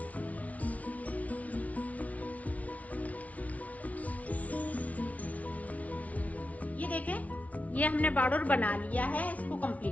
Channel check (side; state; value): right; late; 0.069 ms